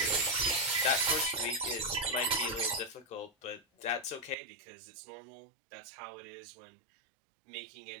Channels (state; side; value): drops out; left; at 4.4 s